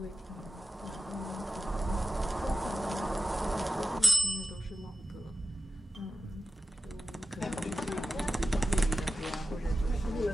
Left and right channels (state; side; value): normal; both; correlation 0.93